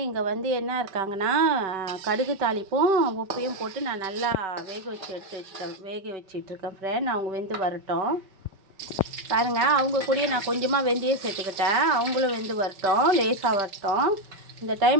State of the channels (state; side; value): late; left; 5.2 ms